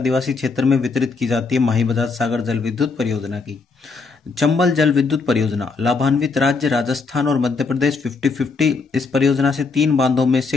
क्षेत्र में वितरित की जाती है। माही बजाज सागर जल विद्युत परियोजना की। चंबल जल विद्युत परियोजना, लाभान्वित राज्य राजस्थान और मध्य प्रदेश 50-50। इस परियोजना से 3 बांधों में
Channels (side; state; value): right; quieter; 4.4 dB